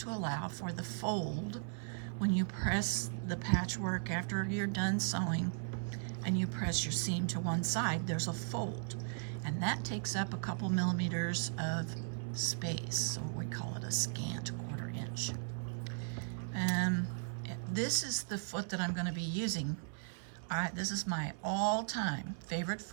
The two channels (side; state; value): left; silent; 53 dB below the other